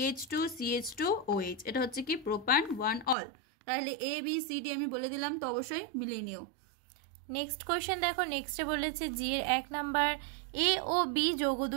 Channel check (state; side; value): drops out; left; at 3.2 s